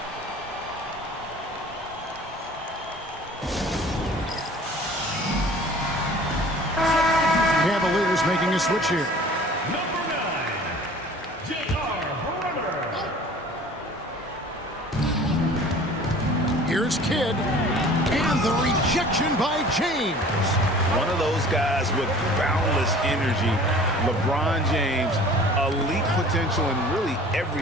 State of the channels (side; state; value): both; normal; correlation 0.46